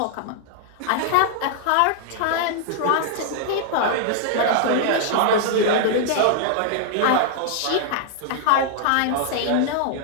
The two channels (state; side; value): different; both; correlation 0.00